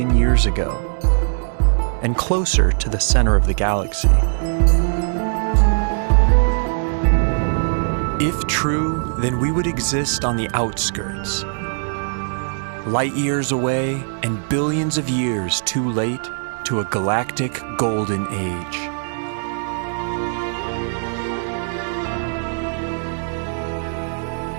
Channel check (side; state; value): left; silent; digital silence